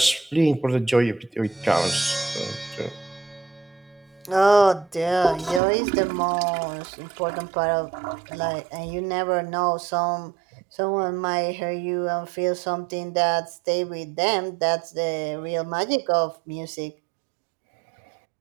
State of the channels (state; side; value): drops out; left; at 5.6 s